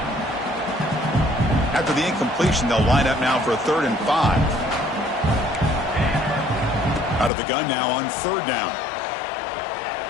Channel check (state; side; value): drops out; right; at 7.3 s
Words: After the incompletion, they'll line up now for a 3rd and 5. Out of the gun now on 3rd down.